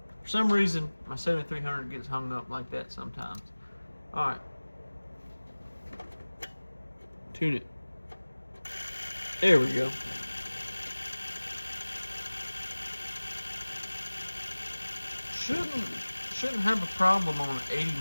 for some reason, my 7300 gets hung up like that sometimes. All right. Tune it. There we go. Shouldn't have a problem on 80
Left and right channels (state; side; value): inverted; both; correlation -1.00